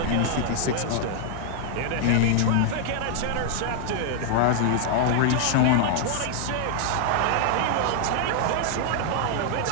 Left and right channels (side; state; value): both; different; correlation 0.00